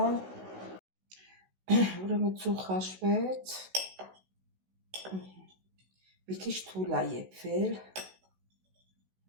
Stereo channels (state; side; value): late; left; 16 ms